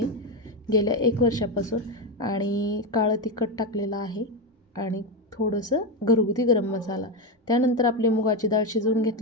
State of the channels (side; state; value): both; normal; correlation 0.11